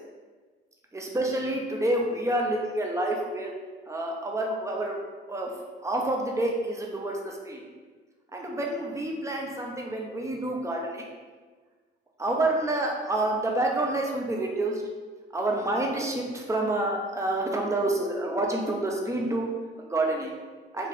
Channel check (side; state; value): both; normal; correlation 0.52